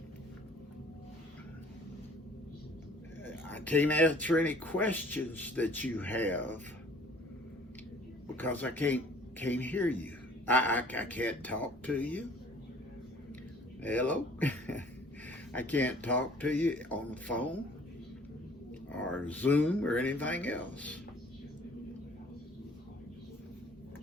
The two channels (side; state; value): both; normal; correlation 0.54